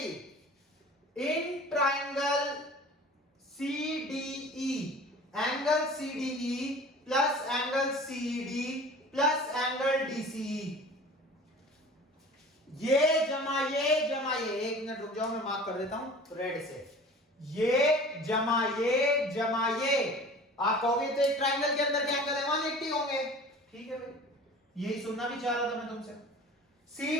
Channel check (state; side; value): normal; both; correlation 0.42